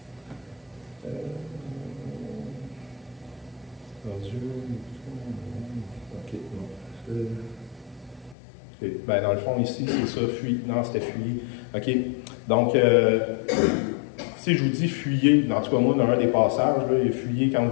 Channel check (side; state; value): right; drops out; at 8.3 s